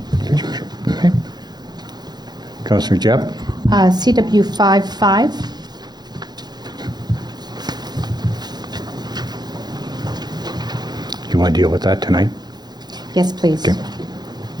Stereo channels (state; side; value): late; left; 0.20 ms